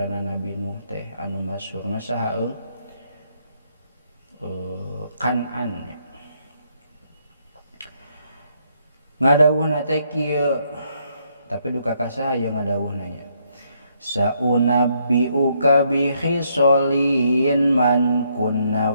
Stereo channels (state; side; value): inverted; both; correlation -0.73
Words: Nabi Nuh teh anu masyhurna saha Kan'an. Ngadawuhna teh kieu tapi duka ka saha ye ngadawuhna nya. Saunabbiuka bi khisolin man kunna